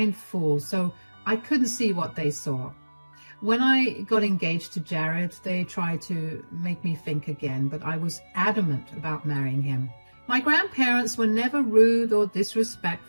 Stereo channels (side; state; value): both; inverted; correlation -1.00